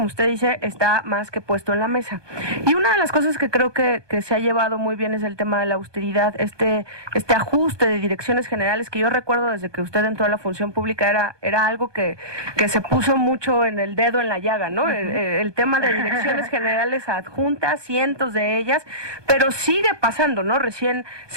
usted dice, está más que puesto en la mesa. Y una de las cosas que creo que se ha llevado muy bien es el tema de la austeridad, este ajuste de direcciones generales, que yo recuerdo desde que usted entró a la función pública era algo que se puso mucho en el dedo en la llaga, ¿no? El tema de direcciones generales adjuntas, cientos de ellas, pero sigue pasando, ¿no? Recién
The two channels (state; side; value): late; left; 1.2 ms